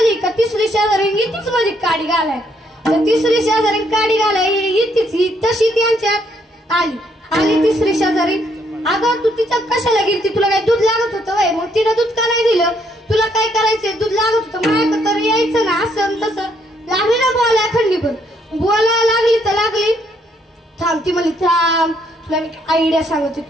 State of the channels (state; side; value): normal; both; correlation 0.71